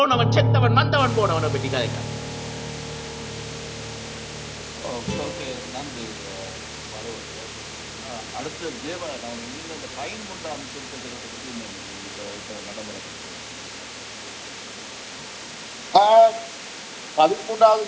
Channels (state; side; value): identical; both; correlation 1.00